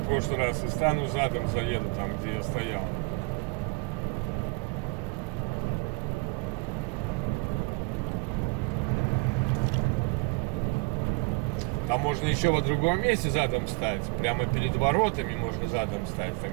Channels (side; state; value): left; quieter; 30.3 dB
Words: в прошлый раз, и стану задом, заеду там, где я стоял. Там можно еще во другом месте задом стать, прямо перед воротами можно задом стать,